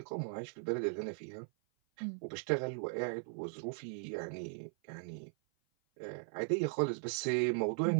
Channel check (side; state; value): left; silent; 52 dB below the other